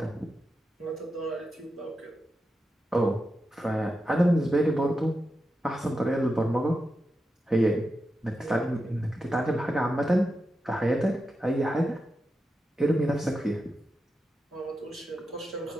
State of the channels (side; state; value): both; normal; correlation 0.89